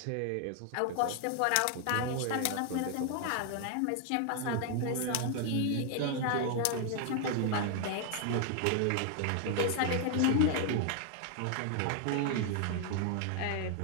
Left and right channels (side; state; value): both; different; correlation 0.00